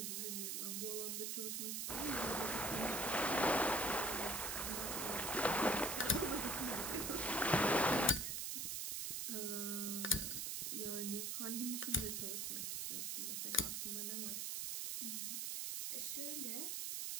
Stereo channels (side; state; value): right; noise; hiss, 1 dB below the sound